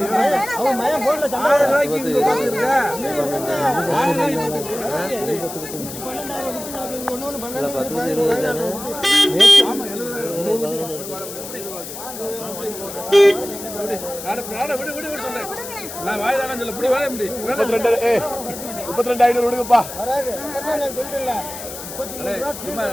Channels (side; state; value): left; noise; hiss, 10 dB below the sound